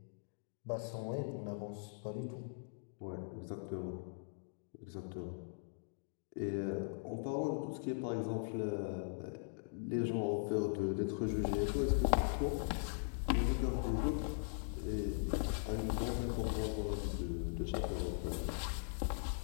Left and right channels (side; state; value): right; silent; digital silence